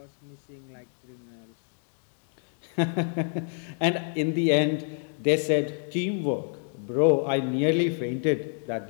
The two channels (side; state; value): right; silent; 56 dB below the other